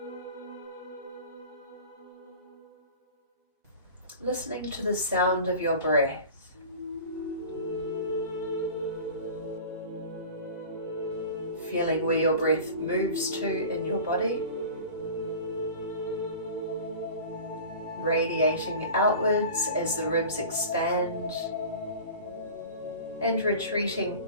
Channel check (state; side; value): inverted; both; correlation -0.38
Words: Listening to the sound of your breath. Feeling where your breath moves to in your body. Radiating outwards as the ribs expand and retreating